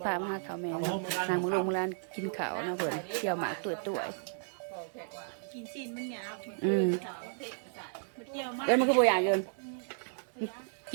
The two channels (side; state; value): left; silent; digital silence